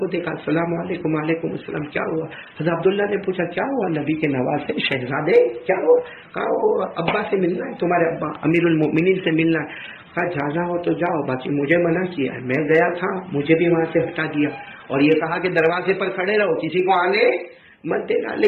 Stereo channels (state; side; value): identical; both; correlation 1.00